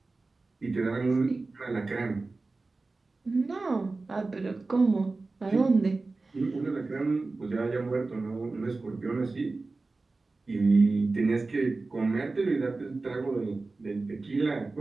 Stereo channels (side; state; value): left; quieter; 3.6 dB